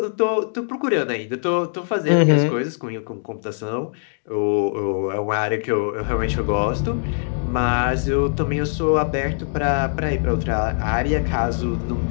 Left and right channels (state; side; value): silent; right; digital silence